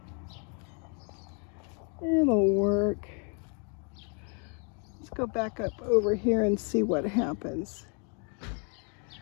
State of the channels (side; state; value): right; quieter; 37.8 dB